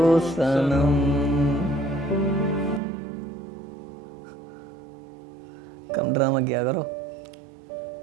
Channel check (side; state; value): left; drops out; at 2.8 s